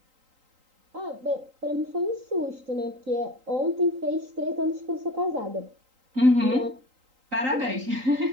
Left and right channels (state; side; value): late; left; 3.8 ms